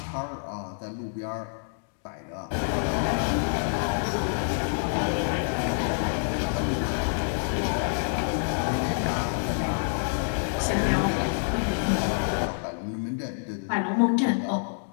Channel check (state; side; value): silent; right; digital silence